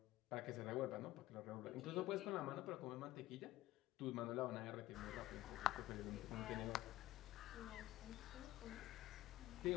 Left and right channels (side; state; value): right; quieter; 15.7 dB